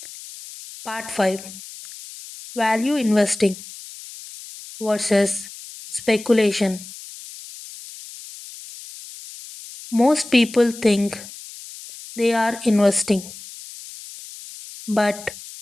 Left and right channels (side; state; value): left; noise; hiss, 15 dB below the sound